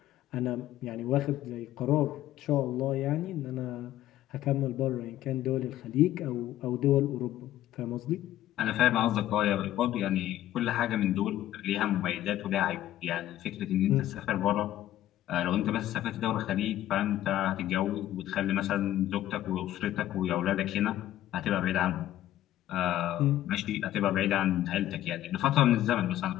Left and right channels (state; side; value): quieter; right; 13.3 dB